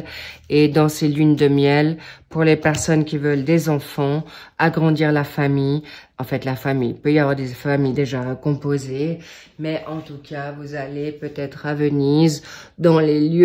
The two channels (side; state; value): both; identical; correlation 1.00